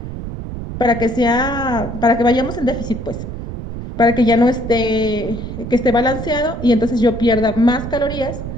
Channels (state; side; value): noise; right; rumble, 8 dB below the sound